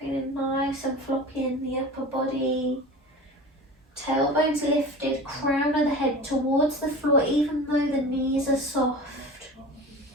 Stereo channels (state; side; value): normal; both; correlation 0.35